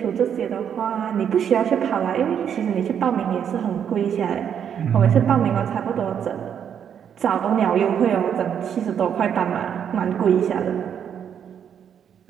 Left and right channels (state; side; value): quieter; left; 8.4 dB